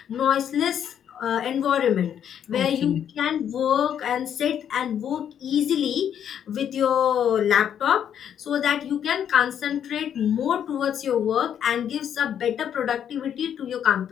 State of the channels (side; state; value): right; quieter; 9.1 dB